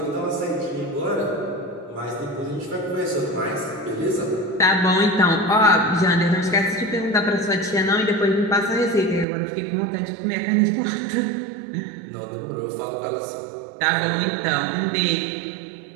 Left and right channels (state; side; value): drops out; left; at 9.2 s